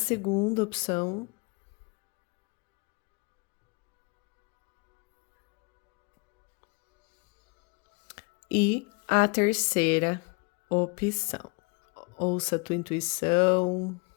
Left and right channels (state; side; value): quieter; right; 30.9 dB